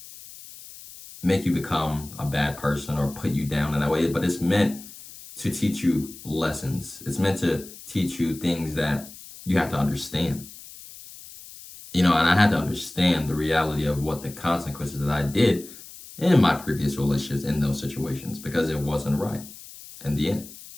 make you become a bad person or put you down in that way, but it's meant to teach you lessons. It's meant to teach you things that you have to understand. And I had to understand the reality of what the consequences that I did in my previous relationships in those situations, because it wasn't right in the end.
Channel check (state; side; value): noise; left; hiss, 17 dB below the sound